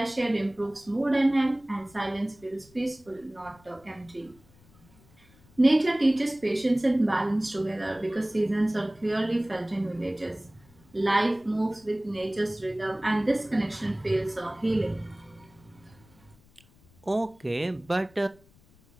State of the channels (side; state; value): left; noise; rumble, 28 dB below the sound